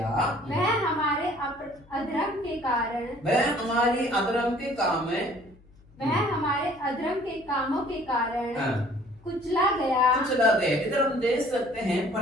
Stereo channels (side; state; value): left; noise; hum, 27 dB below the sound